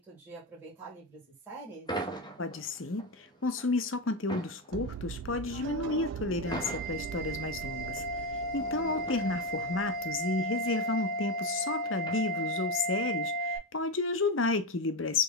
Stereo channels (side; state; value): both; normal; correlation 0.12